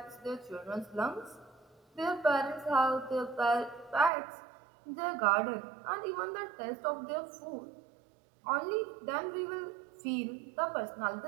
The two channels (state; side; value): drops out; left; at 4.1 s